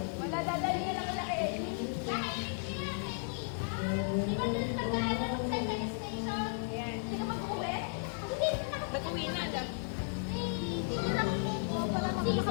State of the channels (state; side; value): silent; right; 55 dB below the other